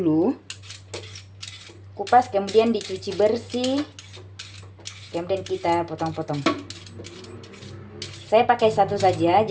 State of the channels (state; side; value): identical; both; correlation 1.00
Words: Kupas kemudian dicuci bersih. Kemudian kita potong-potong. Saya pakai 1 saja.